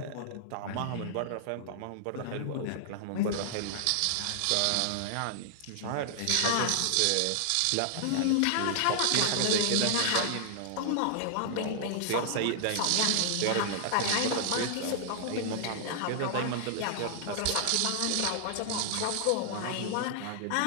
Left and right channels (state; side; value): different; both; correlation -0.01